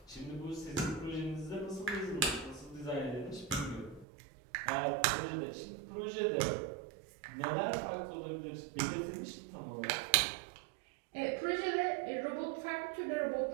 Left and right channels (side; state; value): left; drops out; at 4.0 s